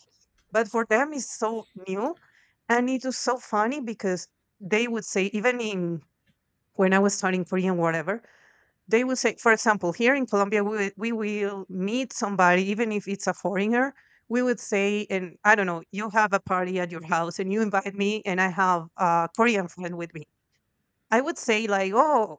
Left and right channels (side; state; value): both; identical; correlation 1.00